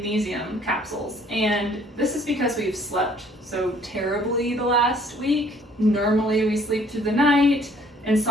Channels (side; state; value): both; normal; correlation 0.59